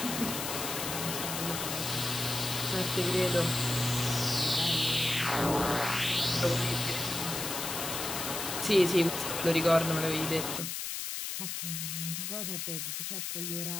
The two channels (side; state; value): left; noise; hiss, 4 dB below the sound